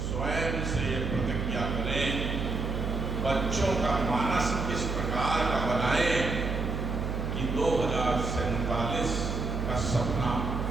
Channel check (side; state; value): right; noise; hum, 2 dB below the sound